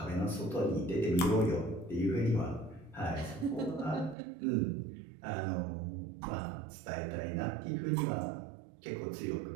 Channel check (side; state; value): left; drops out; at 4.2 s